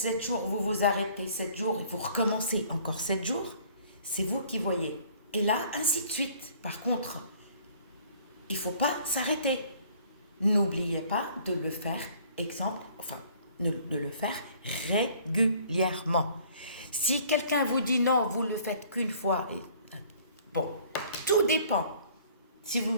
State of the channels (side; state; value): both; inverted; correlation -0.55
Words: jours, vous vous arrêtez 7 jours et vous recommencez encore 7 jours. C'est vous qui voyez. Et là, ainsi de suite. Par contre, il ne faut pas s'arrêter. N'oubliez pas de le faire, de le faire régulièrement. Si quelqu'un vous dit non, vous le faites qu'une fois, bon, tout dépend. Si vous,